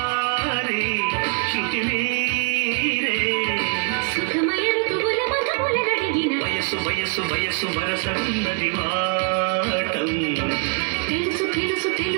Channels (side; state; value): left; quieter; 39.1 dB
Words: శృతి మీరే సుఖమయ ఋతువుల మధువుల నడిగిన వయసు వయసు వయసు వరసలున్నది వాటం తెలుసు తెలుసు